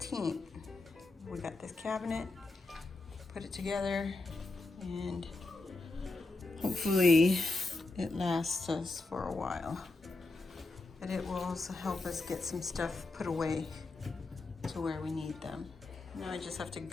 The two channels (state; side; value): quieter; right; 3.2 dB